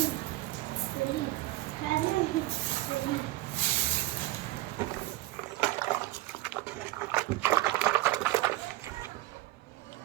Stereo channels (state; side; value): quieter; left; 18.4 dB